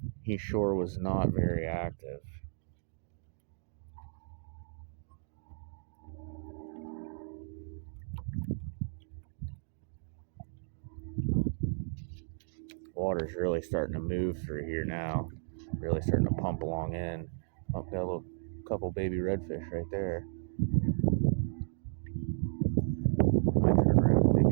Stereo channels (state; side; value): silent; left; digital silence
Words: he sure was not very active. Water's really starting to move through here now. Really starting to pump along in. Oh, got a little couple baby redfish right there. Might turn around and make